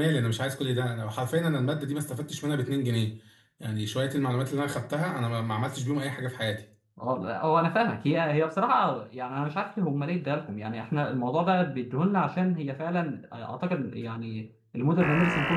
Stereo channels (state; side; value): identical; both; correlation 1.00